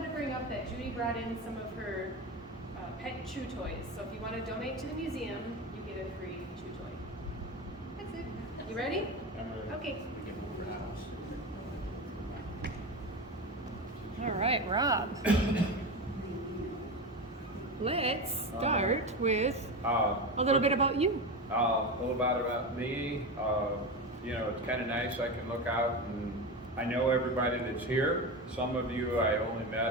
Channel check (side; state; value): both; normal; correlation 0.21